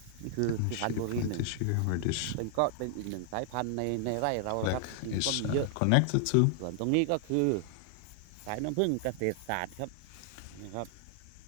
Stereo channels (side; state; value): both; different; correlation 0.00